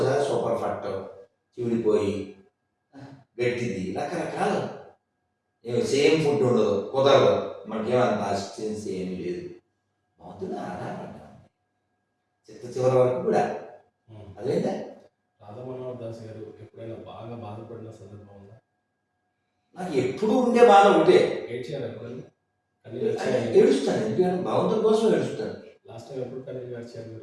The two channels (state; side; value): identical; both; correlation 1.00